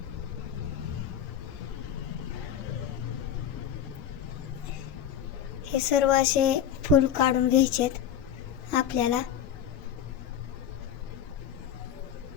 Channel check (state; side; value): quieter; right; 9.6 dB